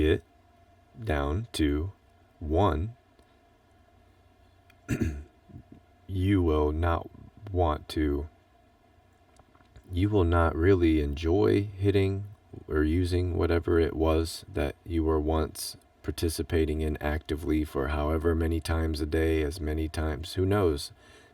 down to 1, you will not really enjoy hitting or using whatever it was that you were once participating in actively for however many times a day, as many times, who knows.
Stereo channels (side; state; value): both; identical; correlation 1.00